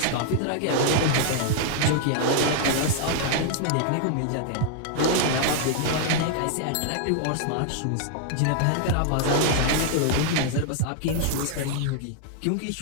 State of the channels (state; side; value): different; both; correlation -0.01